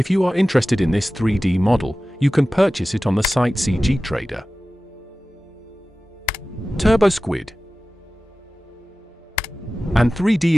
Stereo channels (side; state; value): both; normal; correlation 0.96